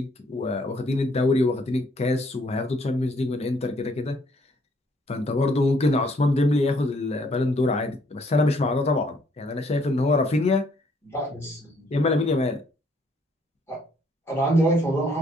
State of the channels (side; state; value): both; normal; correlation 0.66